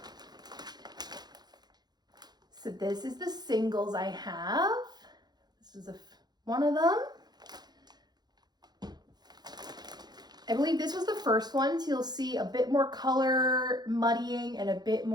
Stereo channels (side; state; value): left; late; 0.20 ms